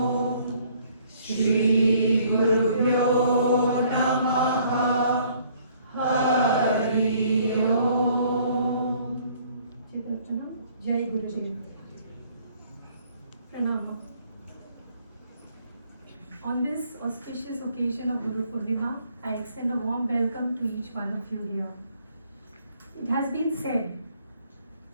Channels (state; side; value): inverted; both; correlation -0.61